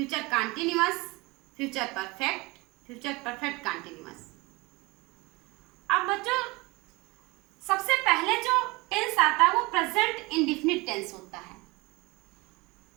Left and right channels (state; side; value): quieter; left; 24.3 dB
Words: continuous, future perfect, future perfect continuous. अब बच्चों, सबसे पहले जो टेंस आता है वो प्रेजेंट इंडेफिनिट टेंस होता है।